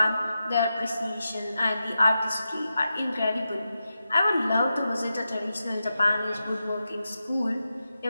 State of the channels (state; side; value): inverted; both; correlation -0.90